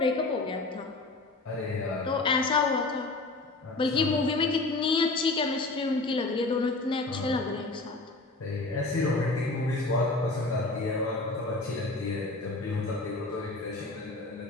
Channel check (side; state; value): right; quieter; 3.2 dB